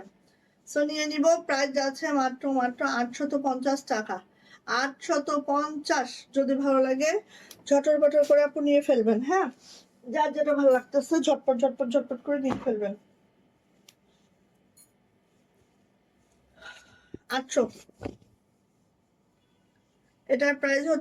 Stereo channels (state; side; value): identical; both; correlation 1.00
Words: সো নিয়ে নিব। প্রাইস যাচ্ছে মাত্র 850 টাকা। 850, যদি ভালো লাগে ঝটর পটর করে আপু নিয়ে ফেলবেন, হ্যাঁ। যার যেটা ভালো লাগতেছে ঝটপট ঝটপট ঝটপট করে নিয়ে ফেলবেন। 800, এটার প্রাইস